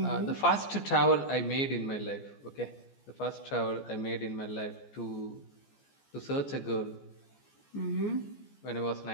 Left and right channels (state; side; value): late; right; 14 ms